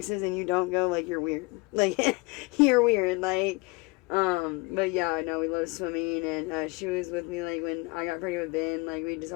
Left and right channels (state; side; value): quieter; right; 25.8 dB